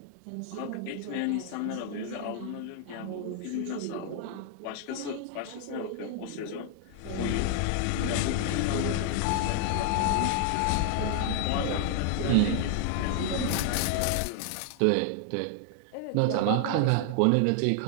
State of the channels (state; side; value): different; both; correlation 0.00